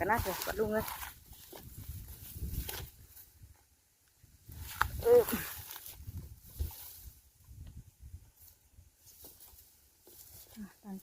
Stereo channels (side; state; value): both; identical; correlation 1.00